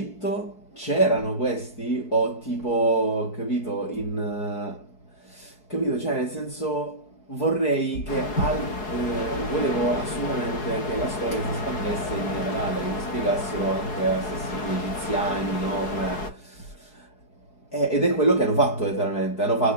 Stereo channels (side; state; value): right; late; 4.7 ms